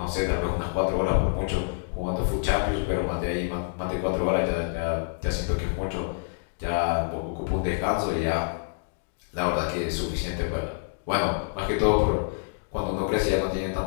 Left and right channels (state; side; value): silent; right; digital silence